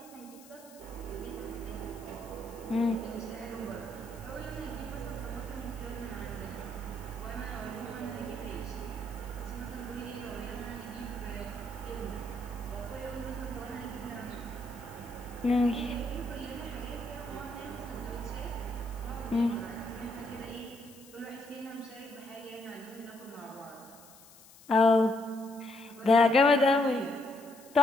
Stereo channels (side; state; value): left; noise; hiss, 21 dB below the sound